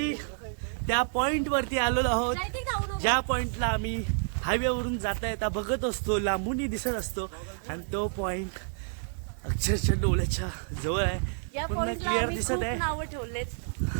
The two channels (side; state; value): left; silent; digital silence